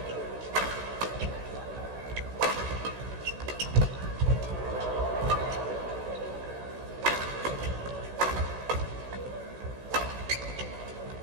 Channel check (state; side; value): late; left; 16 ms